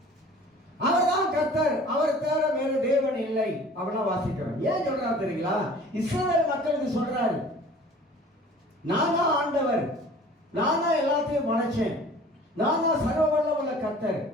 அவர் தான் கர்த்தர், அவர் தவிர வேறு தேவன் இல்லை அப்படின்னா வாசிக்கிறோம். ஏன் சொல்றாரு தெரியுங்களா? இஸ்ரவேல் மக்களுக்கு சொல்றாரு, நான் தான் ஆண்டவர், நான் தான் எல்லாத்தையும் படைச்சேன், நான் தான் சர்வ வல்லமுள்ள கர்த்தர்.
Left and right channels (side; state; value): both; normal; correlation 0.47